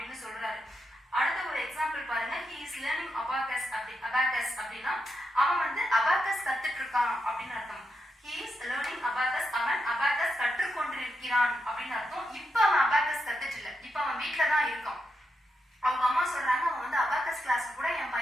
சொல்றாரு. அடுத்த ஒரு எக்ஸாம்பிள் பாருங்க, he is learning abacus அப்படின்னா அவன் வந்து abacus கத்துட்டு இருக்கான் அப்படின்னு அர்த்தம். he is learning abacus, அவன் abacus கற்றுக்கொண்டிருக்கிறான் அப்படின்னு அர்த்தம். இப்ப அவன் abacus கத்துட்டு இல்ல, இப்ப அவன் வீட்டுல தான் இருக்கான். அவங்க அம்மா சொல்றாங்க, அவன் வந்து abacus கிளாஸ் கூட என்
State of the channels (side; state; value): both; normal; correlation 0.84